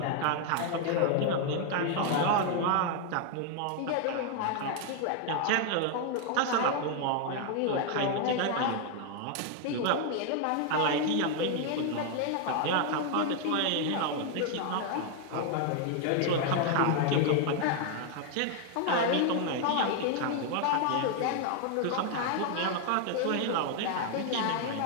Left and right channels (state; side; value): different; both; correlation 0.00